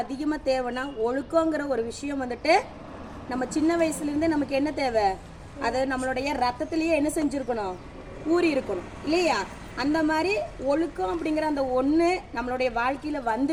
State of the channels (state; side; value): identical; both; correlation 1.00